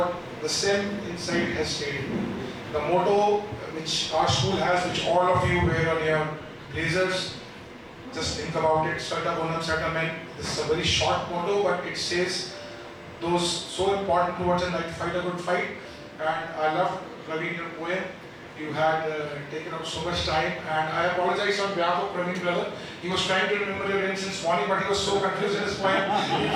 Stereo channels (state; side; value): identical; both; correlation 1.00